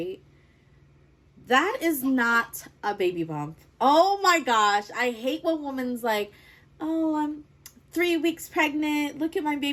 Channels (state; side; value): identical; both; correlation 1.00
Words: That is not a baby bump. Oh my gosh. I hate when women's like, oh, I'm 3 weeks pregnant. Look at my